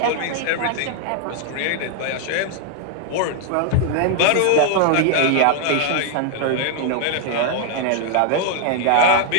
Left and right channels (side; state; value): both; different; correlation -0.01